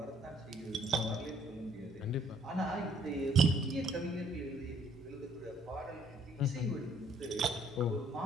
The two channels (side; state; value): both; normal; correlation 0.63